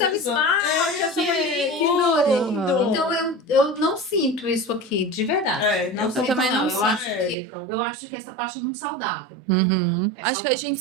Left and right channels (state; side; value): drops out; left; at 7.4 s